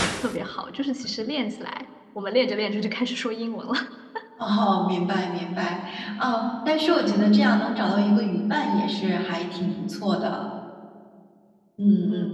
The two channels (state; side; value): identical; both; correlation 1.00